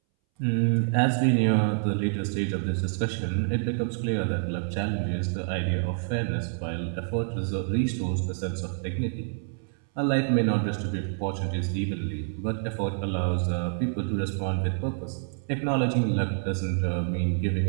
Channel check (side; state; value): left; silent; 60 dB below the other